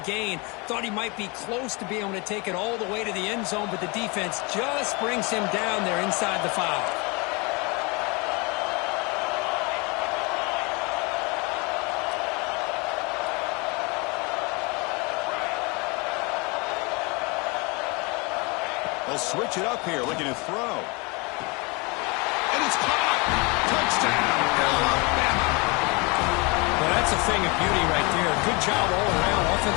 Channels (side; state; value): right; quieter; 28.6 dB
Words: gain. Thought he might be close to being able to take it all the way to the end zone, but the defense just brings him down there inside the 5. They'll switch it up here, looking to throw. And it's caught. Touchdown, Alabama. Well, that's a thing of beauty right there. Good job all around.